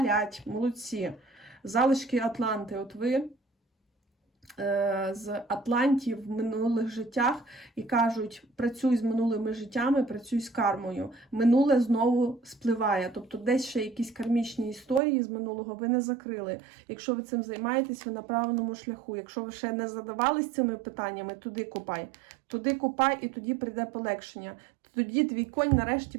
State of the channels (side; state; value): left; drops out; at 15.0 s